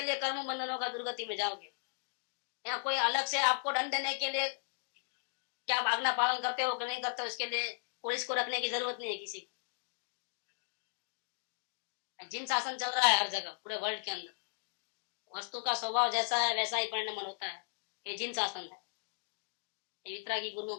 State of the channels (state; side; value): silent; right; digital silence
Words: लिए कर्म बंधन होगा, दुर्गति में जाओगे। या कोई अलग से आपको दंड देने के लिए क्या आप आज्ञा पालन करते हो कि नहीं करते हो, उसके लिए पुलिस को रखने की जरूरत नहीं है किसी को। जिन शासन चल रहा है हर जगह पूरे वर्ल्ड के अंदर, वस्तु का स्वभाव जैसा है वैसा ही परिणाम होता है। ये जिन शासन है, ये वितरागी गुरुओं